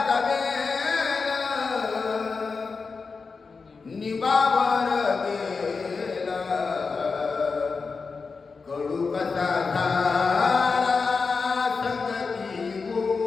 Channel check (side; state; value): right; quieter; 4.7 dB